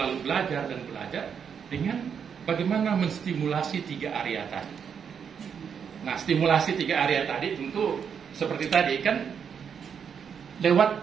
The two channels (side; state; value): left; quieter; 7.2 dB